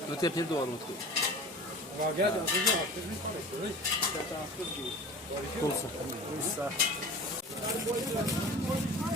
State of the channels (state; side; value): normal; both; correlation 0.38